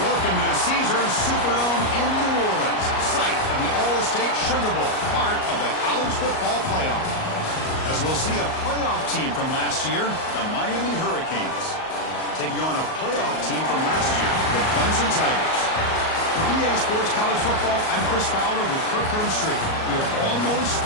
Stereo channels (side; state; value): right; late; 38 ms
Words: Welcome to the Caesars Superdome in New Orleans, site of the All-State Sugar Bowl, part of the college football playoff. As we'll see a playoff team from last year, the Miami Hurricanes, taking on a playoff team from last year, the Clemson Tigers. For EA Sports College Football, I'm Chris Fowler with Kirk Herbstreit. We are almost